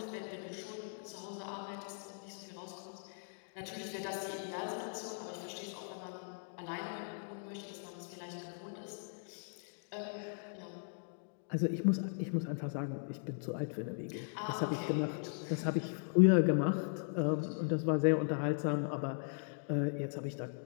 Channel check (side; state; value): right; silent; digital silence